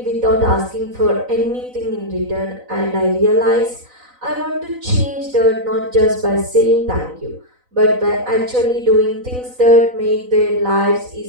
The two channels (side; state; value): left; late; 4.0 ms